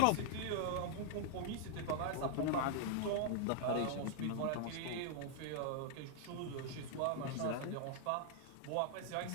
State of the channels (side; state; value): both; different; correlation -0.01